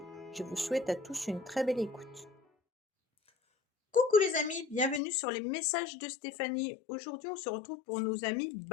Je vous souhaite à tous une très belle écoute. Coucou les amis, bienvenue sur les messages de Stéphanie. Aujourd'hui, on se retrouve pour nos amis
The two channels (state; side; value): drops out; right; at 5.0 s